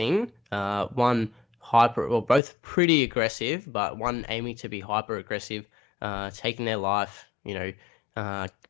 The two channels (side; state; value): right; drops out; at 2.4 s